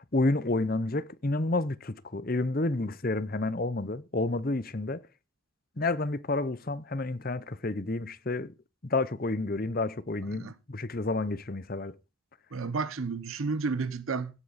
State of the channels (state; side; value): normal; both; correlation 0.46